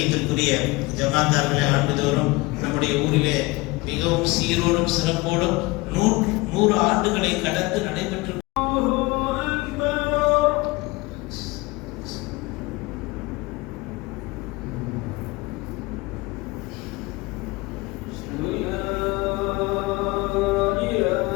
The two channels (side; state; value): right; quieter; 23.0 dB